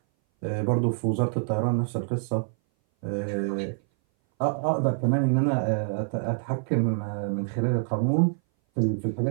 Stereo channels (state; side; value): silent; left; 58 dB below the other